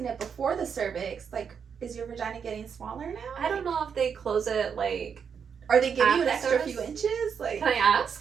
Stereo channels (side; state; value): left; quieter; 6.8 dB